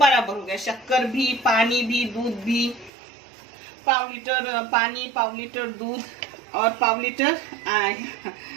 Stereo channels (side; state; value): left; drops out; at 2.9 s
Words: हो गया, शक्कर भी, पानी भी, दूध भी। 1/4 लीटर पानी, 1/4 लीटर दूध और 1/4 लीटर